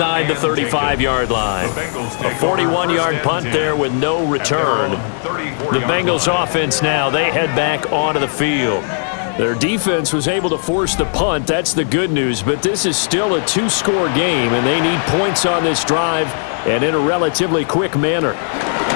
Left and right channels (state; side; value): silent; right; 68 dB below the other